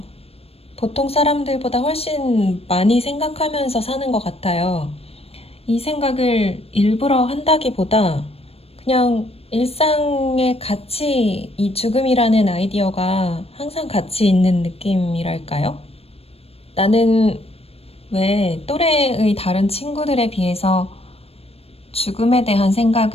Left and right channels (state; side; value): late; right; 0.29 ms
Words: 보통 사람들보다 훨씬 많이 생각하면서 사는 것 같아요. 이 생각을 일부러 한다기보다 그냥 일상에 같이 이 죽음이라는 아이디어가 항상 같이 있는 느낌이랄까요? 나는 왜 또래의 다른 친구들에 비해서 죽음에 대한